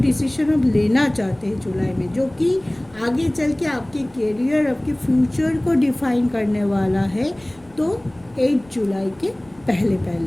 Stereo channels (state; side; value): noise; left; rumble, 28 dB below the sound